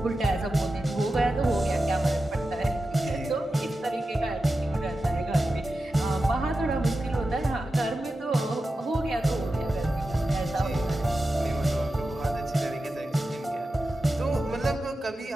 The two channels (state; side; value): normal; both; correlation 0.92